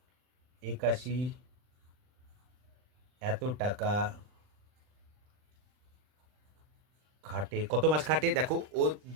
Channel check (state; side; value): late; left; 39 ms